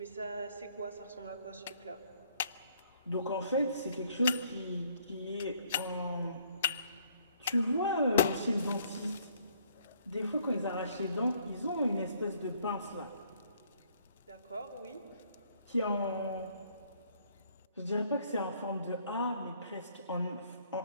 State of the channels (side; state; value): both; inverted; correlation -0.64